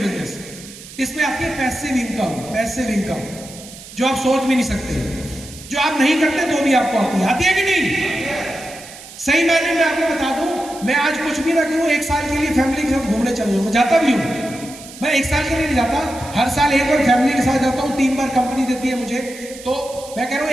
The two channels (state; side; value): noise; right; hiss, 16 dB below the sound